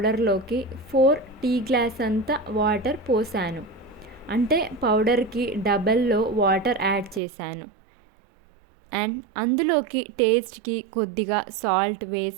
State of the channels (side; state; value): left; drops out; at 7.2 s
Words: 4 టీ గ్లాస్ అంతా వాటర్ పోసాను. అంటే పౌడర్కి డబల్లో వాటర్ యాడ్ చేశాను. అండ్ అందులోకి టేస్ట్కి కొద్దిగా సాల్ట్